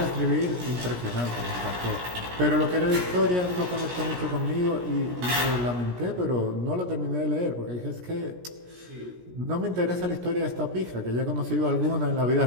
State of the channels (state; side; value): late; left; 17 ms